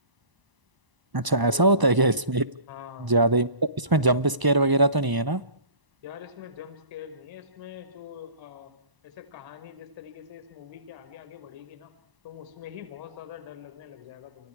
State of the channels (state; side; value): late; left; 1.0 ms